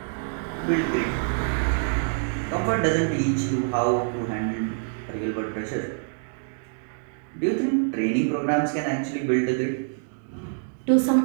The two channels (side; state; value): left; silent; digital silence